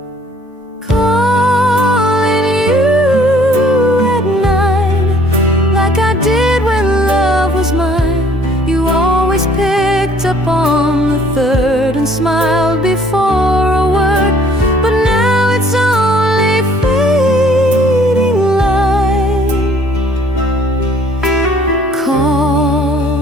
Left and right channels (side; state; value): both; normal; correlation 0.58